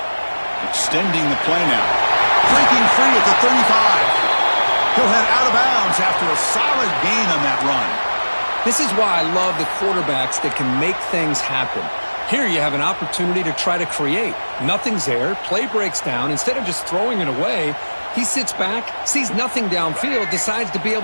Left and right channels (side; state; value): both; inverted; correlation -1.00